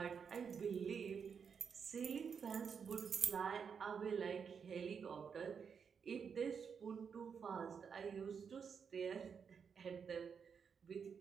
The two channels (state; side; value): quieter; left; 6.5 dB